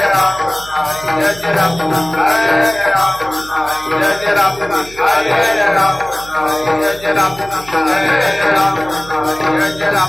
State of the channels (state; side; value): noise; right; hum, 19 dB below the sound